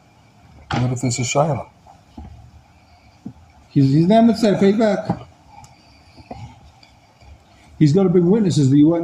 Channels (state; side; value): identical; both; correlation 1.00